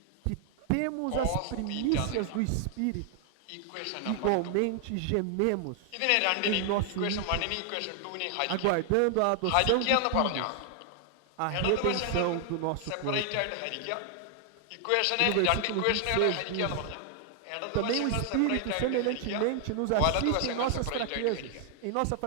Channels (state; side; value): different; both; correlation 0.00